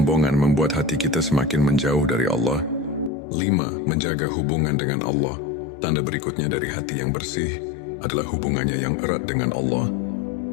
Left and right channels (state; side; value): drops out; right; at 3.1 s